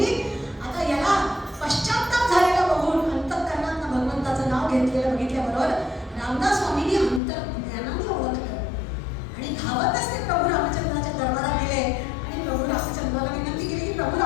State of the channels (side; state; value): right; drops out; at 7.2 s